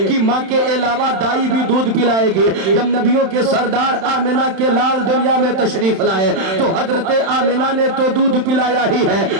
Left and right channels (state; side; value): late; left; 31 ms